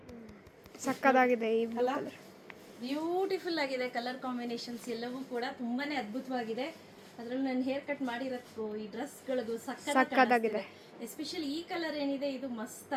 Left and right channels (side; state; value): both; identical; correlation 1.00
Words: ಸಕ್ಕದಾಗಿದೆ. ಈ ಬ್ಯೂಟಿಫುಲ್ ಆಗಿದೆ. ಕಲರ್ ಕಾಂಬಿನೇಷನ್ಸ್ ಎಲ್ಲವೂ ಕೂಡ ತುಂಬಾನೇ ಅದ್ಭುತವಾಗಿದೆ. ಅದ್ರಲ್ಲಿ ನಾನು ಹೇರ್ ಕಟ್ ಮಾಡಿರೋದಕ್ಕೂ ಈ ಡ್ರೆಸ್ಗಳಿಗೂ ಸಕ್ಕದಾಗಿದೆ. ಎಸ್ಪೆಷಲಿ ಈ ಕಲರ್ ಏನಿದೆ, ಇದು ಮಸ್ತ್